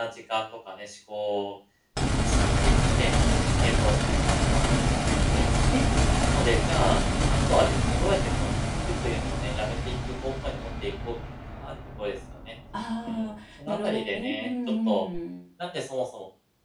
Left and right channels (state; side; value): identical; both; correlation 1.00